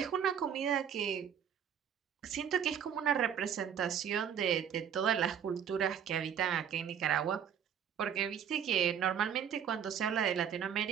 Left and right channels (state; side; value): quieter; left; 8.4 dB